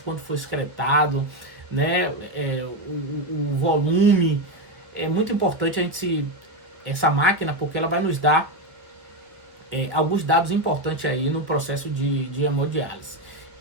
quanto foi excretado, né, o volume. É muito importante a gente essa máquina, porque ela vai nos dar alguns dados importantes aí no processo de hemodiálise.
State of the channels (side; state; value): left; late; 1.4 ms